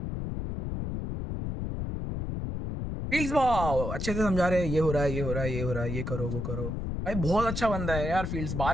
fields wow अच्छे से समझा रहे हैं ये हो रहा है ये हो रहा है ये हो रहा है ये करो वो करो भाई बहुत अच्छा बंदा है यार फील्ड्स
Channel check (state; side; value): noise; left; rumble, 4 dB below the sound